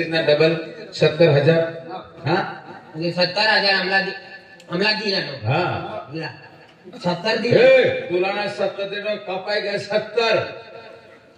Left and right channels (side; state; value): both; identical; correlation 1.00